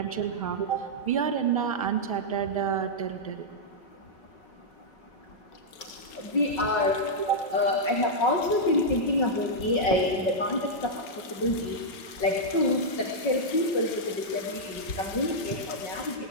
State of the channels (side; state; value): right; late; 5.4 ms